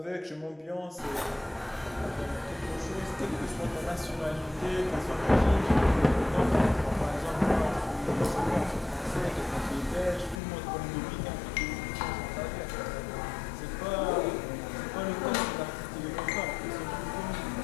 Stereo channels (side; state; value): right; drops out; at 10.4 s